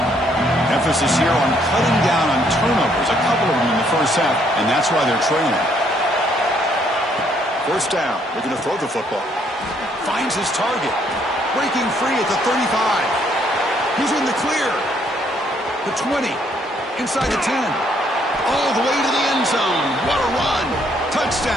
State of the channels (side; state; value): both; normal; correlation 0.68